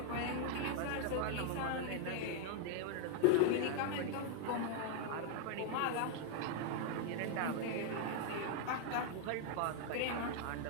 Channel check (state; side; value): different; both; correlation 0.00